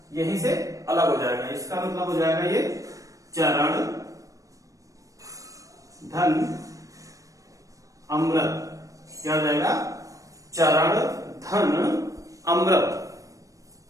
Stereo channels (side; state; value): left; late; 0.16 ms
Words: यहीं से अलग हो जाएगा। इसका मतलब हो जाएगा ये चरण धन अमृत। क्या हो जाएगा? चरण धन अमृत,